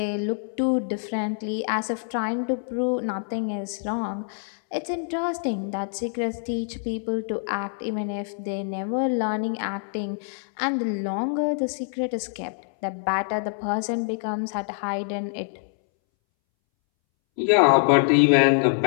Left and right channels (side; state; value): right; silent; 61 dB below the other